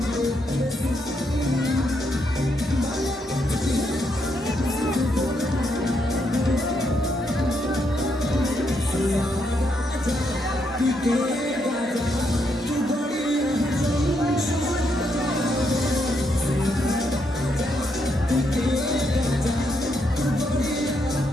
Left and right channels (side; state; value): both; normal; correlation 0.78